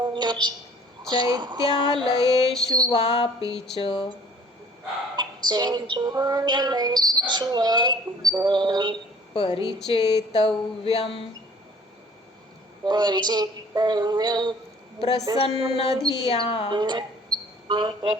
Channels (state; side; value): normal; both; correlation 0.53